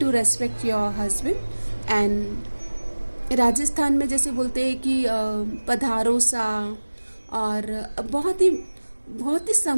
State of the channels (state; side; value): inverted; both; correlation -1.00